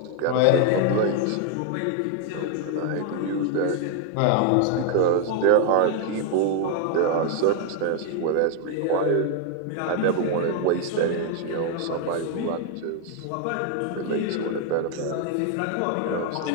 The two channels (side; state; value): both; different; correlation 0.00